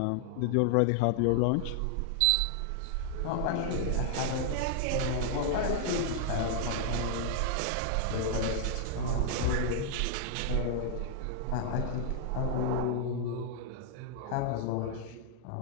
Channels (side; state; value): both; different; correlation 0.00